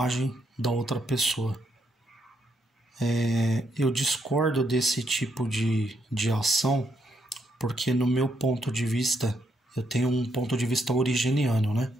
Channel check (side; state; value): both; normal; correlation 0.76